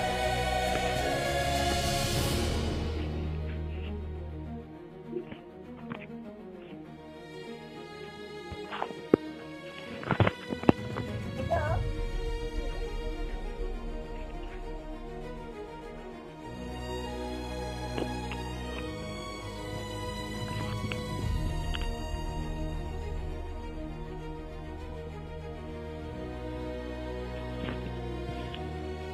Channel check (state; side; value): identical; both; correlation 1.00